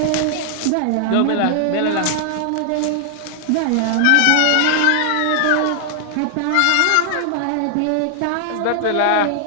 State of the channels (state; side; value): different; both; correlation 0.00